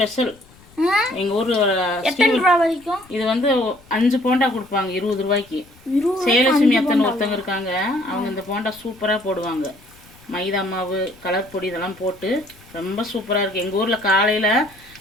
எங்கள் ஊர் வரைக்கும் இது வந்து 5 போண்டா கொடுப்பாங்க 20 ரூபாய்க்கு. சேலட்சுமி அத்தனை ஒருத்தங்க இருக்காங்க. அவங்க இந்த போண்டா சூப்பராக போடுவாங்க. மைதா மாவு, கலர் பொடி இதெல்லாம் போட்டு ரொம்ப சூப்பராக இருக்குது. எங்கள் ஊரில் காலையில்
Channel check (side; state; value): left; noise; rumble, 26 dB below the sound